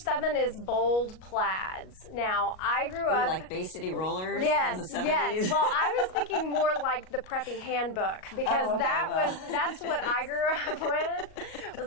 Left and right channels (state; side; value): late; right; 38 ms